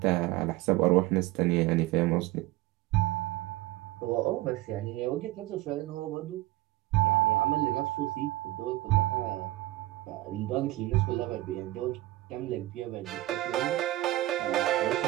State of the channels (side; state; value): left; quieter; 17.3 dB